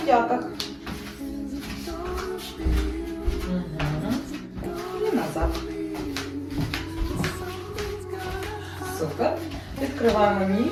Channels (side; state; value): both; identical; correlation 1.00